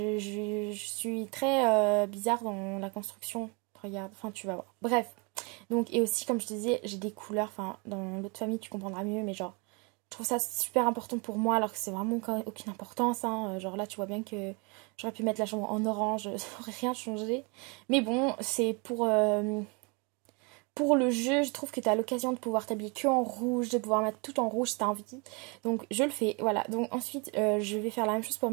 suis très bizarre dans la construction. Regarde, enfin tu vas voir. Bref, donc, et aussi, comme je te disais, j'ai des couleurs, enfin, dans l'autre famille, tu comprendras mieux, mais genre, je trouve ça super important pour moi, alors que c'est vraiment aucune importance, hein. Genre là, tu vois bien que j'aurais pu mettre la chambre en orange, ça aurait rien changé. Mais bon, c'est pour le jeu, je trouve que tu as l'occasion de pouvoir t'habiller que en rouge, de pouvoir mettre tout en rouge si tu as envie. Donc je le fais, voilà. Donc ensuite, je vais faire la même chose pour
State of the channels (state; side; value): quieter; left; 31.4 dB